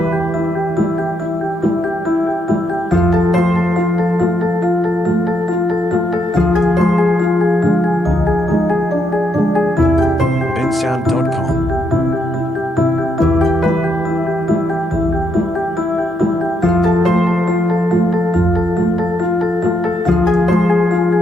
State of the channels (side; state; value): both; normal; correlation 0.77